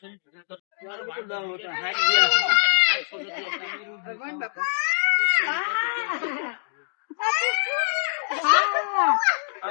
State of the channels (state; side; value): silent; right; digital silence